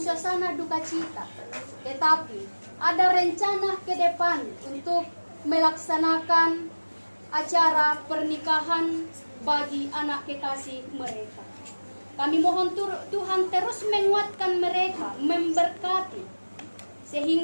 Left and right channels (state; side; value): inverted; both; correlation -1.00